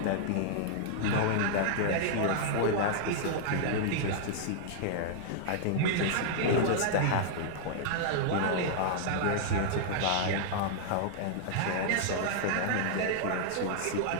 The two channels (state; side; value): different; both; correlation -0.01